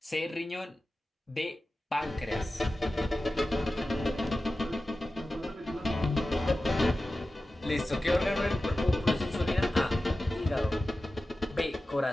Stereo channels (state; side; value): normal; both; correlation 0.95